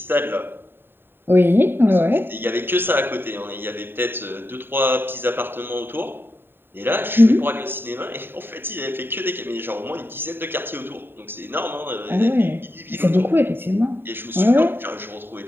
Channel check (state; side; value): late; left; 0.10 ms